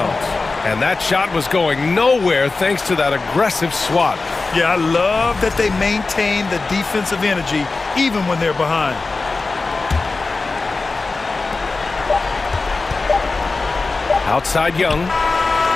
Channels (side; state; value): right; quieter; 3.7 dB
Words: And that shot was going nowhere thanks to that aggressive swat. Yeah, I love that they maintain the defensive energy even when they're behind. Outside Young.